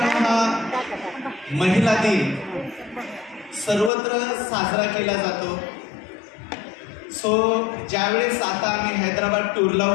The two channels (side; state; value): right; drops out; at 3.9 s